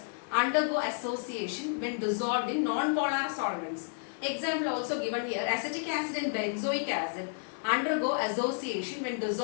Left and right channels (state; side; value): silent; right; digital silence